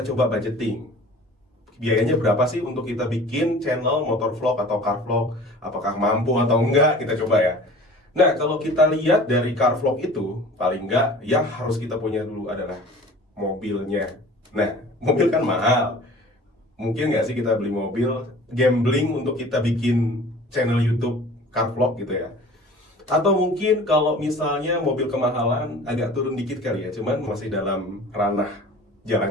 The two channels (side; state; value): both; normal; correlation 0.44